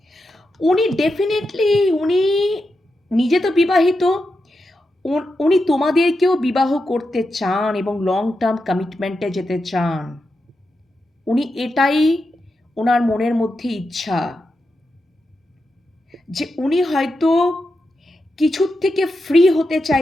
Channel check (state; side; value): normal; both; correlation 0.88